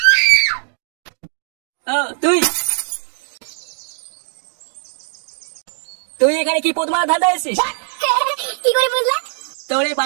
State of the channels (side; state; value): left; silent; digital silence